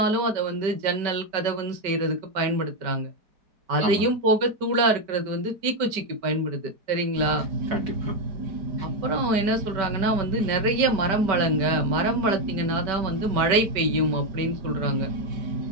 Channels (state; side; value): late; left; 5.2 ms